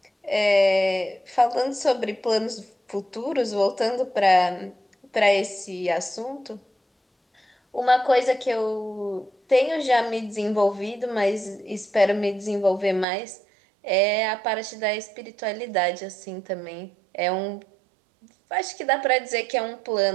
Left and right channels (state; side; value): drops out; left; at 13.1 s